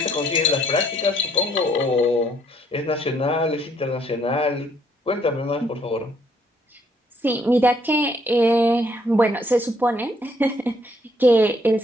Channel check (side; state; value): both; normal; correlation 0.67